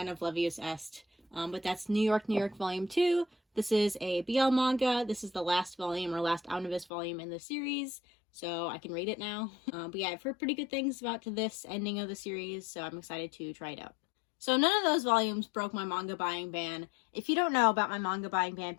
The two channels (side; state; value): right; drops out; at 6.9 s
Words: of Levius Est, but that's New York, New York Volume 2. This is a BL manga. This is the last volume or last omnibus volume in the series, so I can read it now. But yeah, I've heard pretty good things about this ending of the series, so I'm excited to try it out. So none of those volumes broke my manga buying ban. If you don't know about my manga buying ban,